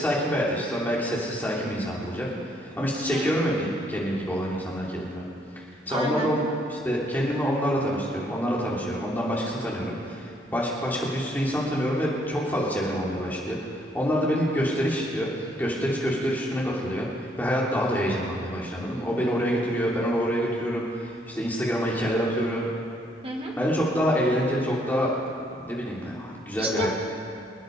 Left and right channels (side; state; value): both; normal; correlation 0.69